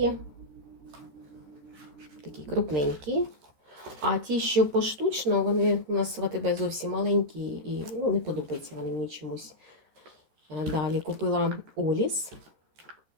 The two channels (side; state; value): left; late; 13 ms